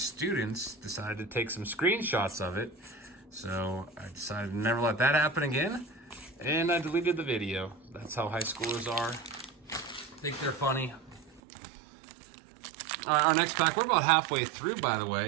decided to take some screenshots of it. So I decided to never let that happen again, and I deleted the video. That's how high schoolers are. Think they're funny. All right, our next pack, we're about halfway through, by the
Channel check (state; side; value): drops out; left; at 11.4 s